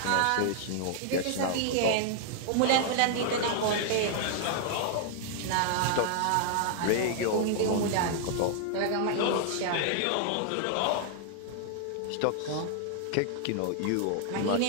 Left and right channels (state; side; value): different; both; correlation -0.01